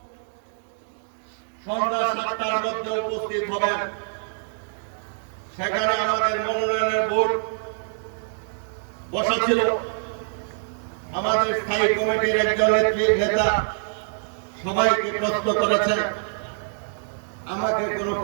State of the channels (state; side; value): silent; left; digital silence